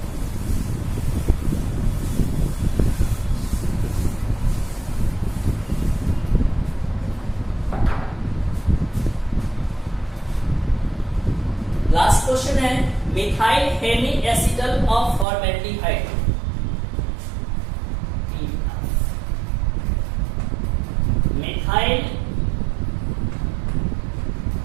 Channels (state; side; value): drops out; left; at 15.2 s